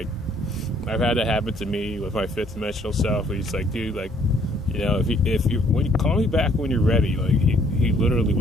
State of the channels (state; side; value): normal; both; correlation 0.63